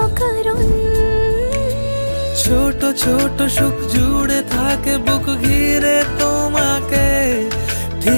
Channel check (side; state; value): both; inverted; correlation -1.00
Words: কারণ ছোট ছোট সুখ জুড়ে থাকে বুক ঘিরে তোমাকে।